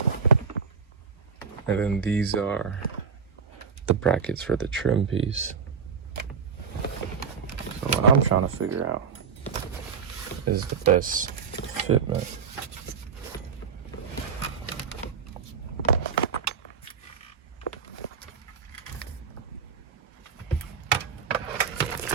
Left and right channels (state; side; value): quieter; left; 5.9 dB